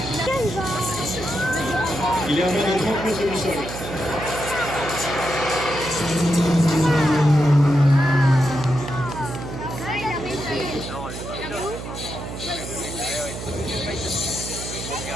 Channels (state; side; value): noise; right; hum, 9 dB below the sound